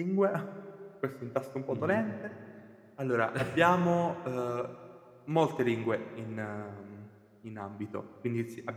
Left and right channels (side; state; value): both; identical; correlation 1.00